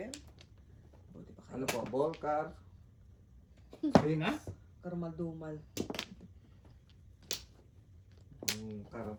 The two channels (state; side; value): identical; both; correlation 1.00